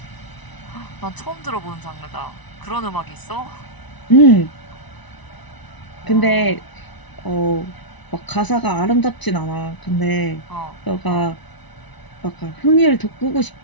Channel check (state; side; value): late; right; 1.0 ms